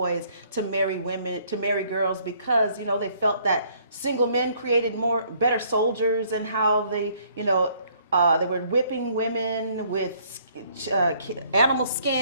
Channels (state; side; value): inverted; both; correlation -0.63